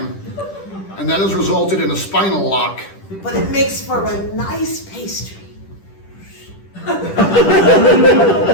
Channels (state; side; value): late; right; 10 ms